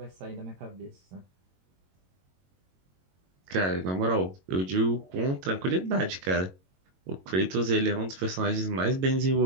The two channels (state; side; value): late; left; 22 ms